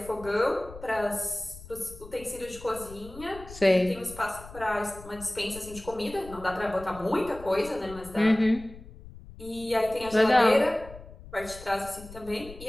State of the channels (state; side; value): noise; left; rumble, 17 dB below the sound